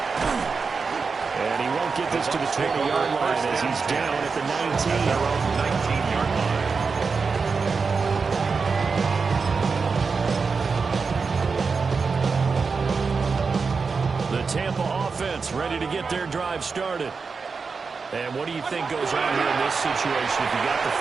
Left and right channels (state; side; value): quieter; left; 4.9 dB